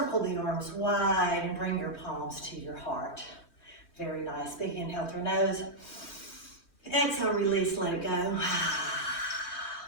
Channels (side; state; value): right; late; 3.1 ms